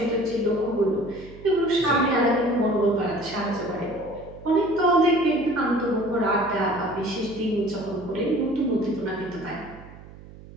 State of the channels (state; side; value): noise; right; hum, 18 dB below the sound